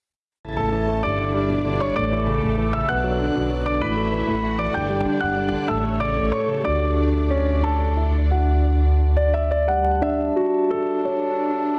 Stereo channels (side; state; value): both; identical; correlation 1.00